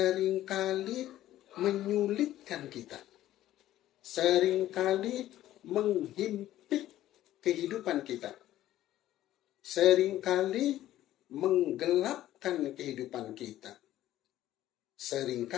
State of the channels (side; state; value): right; quieter; 13.7 dB